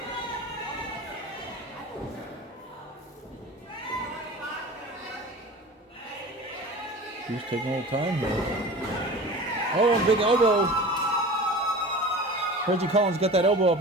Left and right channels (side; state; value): both; normal; correlation 0.36